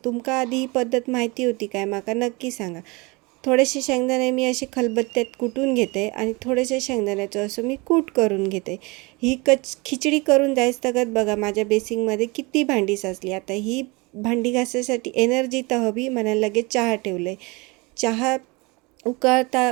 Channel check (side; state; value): left; quieter; 26.3 dB